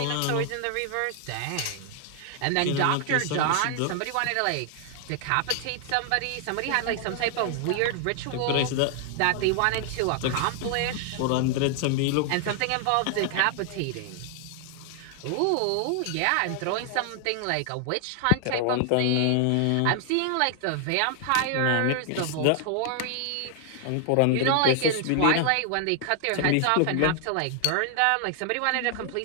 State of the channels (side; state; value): both; different; correlation 0.00